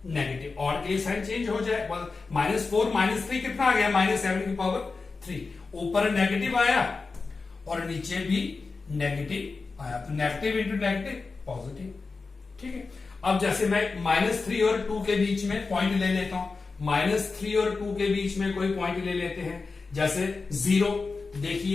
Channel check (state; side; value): quieter; right; 4.2 dB